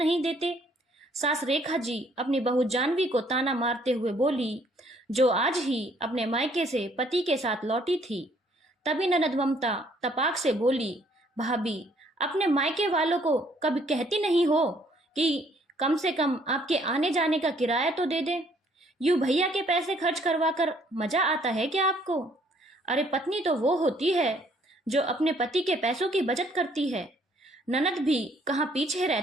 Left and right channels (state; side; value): normal; both; correlation 0.63